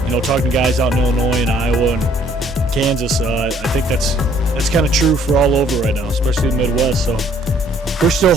talking to guys out in Illinois and Iowa and Kansas, I think that's kind of true for all over right now, especially the Midwest. So we're still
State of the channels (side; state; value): both; normal; correlation 0.61